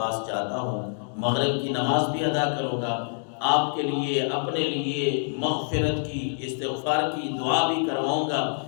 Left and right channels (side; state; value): right; silent; digital silence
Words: جاتا ہوں، مغرب کی نماز بھی ادا کروں گا، آپ کے لیے اپنے لیے مغفرت کی، استغفار کی دعا بھی کرواؤں گا